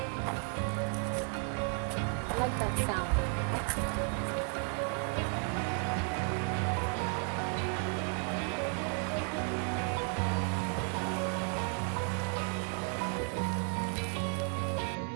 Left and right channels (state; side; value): quieter; left; 38.5 dB